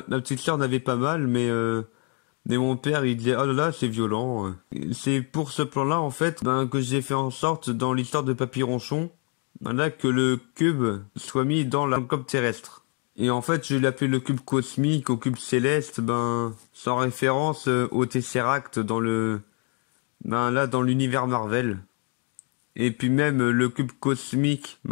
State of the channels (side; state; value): right; quieter; 38.4 dB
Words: petite sœur n'avait pas mal, mais mon père, il disait, oh là là, c'est violent. C'est pour ce plan-là, en fait, que j'ai fait en sorte, dans l'histoire de Papy Ronchon, là, que le cube soit mis dans la globe terrestre. Et en fait, je l'appelle le cube cosmique, au cube céleste, sans référence au Tesseract dans dans l'univers Marvel. Et puis même le cube cosmique,